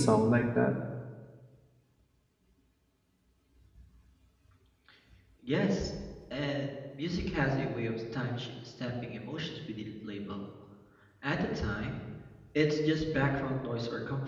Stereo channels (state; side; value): identical; both; correlation 1.00